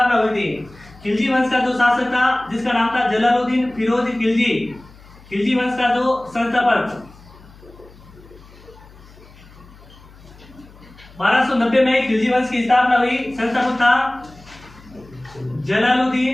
हुई थी। खिलजी वंश का जो शासक था, जिसका नाम था जलालुद्दीन फिरोज खिलजी। खिलजी वंश का जो संस्थापक 1290 में खिलजी वंश की स्थापना हुई। संस्थापक था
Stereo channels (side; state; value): left; noise; hum, 23 dB below the sound